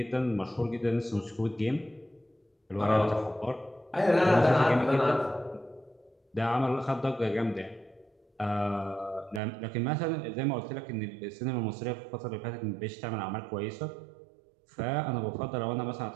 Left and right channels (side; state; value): left; drops out; at 9.4 s